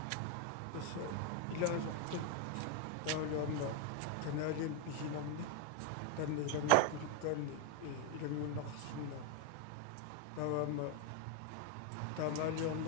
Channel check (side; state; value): both; different; correlation 0.01